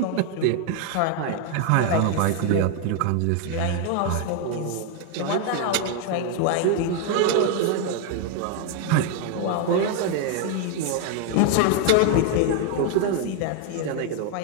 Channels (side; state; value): both; different; correlation 0.01